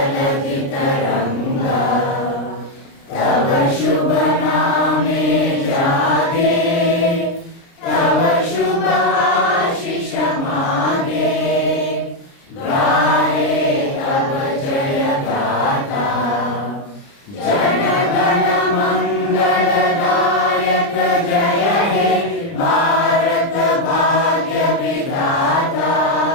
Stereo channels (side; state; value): right; late; 30 ms